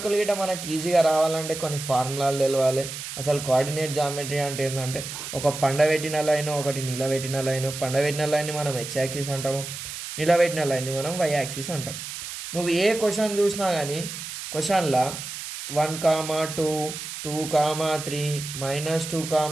గిట్ట మనకి ఈజీగా రావాలంటే కొన్ని ఫార్ములాలు తెలవాలి. అసలు కోఆర్డినేట్ జామెట్రీ అంటే ఏంటంటే, ఒక పండబెట్టిన లైన్, ఒకటి నిలబెట్టిన లైన్. పండబెట్టిన లైన్ని మనం ఎక్స్ యాక్సిస్ అంటాము, నిలబెట్టిన లైన్ని మనం వై యాక్సిస్ అంటాం. నువ్వు ఏ క్వశ్చన్ చూసినా కానీ క్వశ్చన్లో 1, 2, 2, 3, -2,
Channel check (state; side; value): noise; right; hiss, 8 dB below the sound